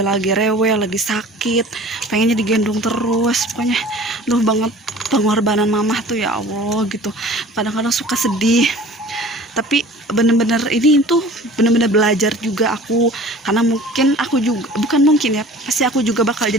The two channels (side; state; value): both; normal; correlation 0.44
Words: lagi rewel, lagi sakit, pengennya digendong terus. Pokoknya banget pengorbanan mamah tuh, ya Allah gitu. Kadang-kadang suka sedih, tapi bener-bener ini tuh bener-bener belajar juga aku, karena mungkin aku juga, bukan mungkin ya, pasti aku juga bakal